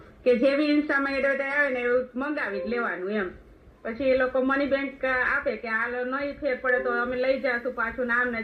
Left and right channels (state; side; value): identical; both; correlation 1.00